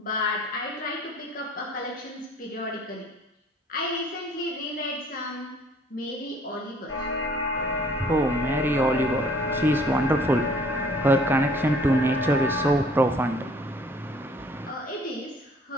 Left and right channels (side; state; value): both; normal; correlation 0.56